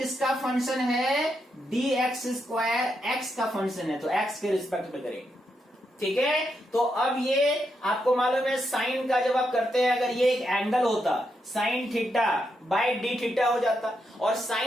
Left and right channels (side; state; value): both; normal; correlation 0.82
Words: फंक्शन है, डी एक्स स्क्वायर एक्स का फंक्शन है, तो एक्स के रिस्पेक्ट में करेंगे, ठीक है। तो अब ये आपको मालूम है साइन का जब आप करते हैं, अगर ये एक एंगल होता sine theta by D theta हो जाता, और